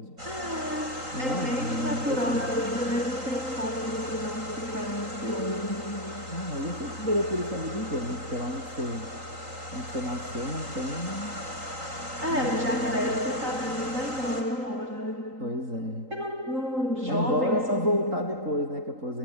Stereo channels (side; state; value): left; late; 3.8 ms